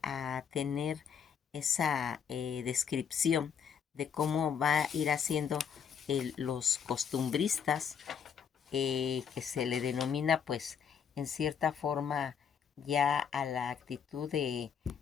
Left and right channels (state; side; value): quieter; right; 7.5 dB